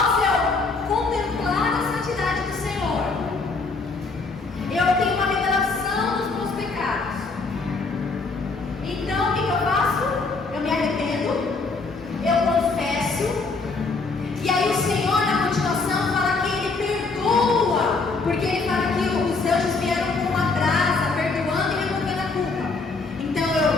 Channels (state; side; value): quieter; right; 4.0 dB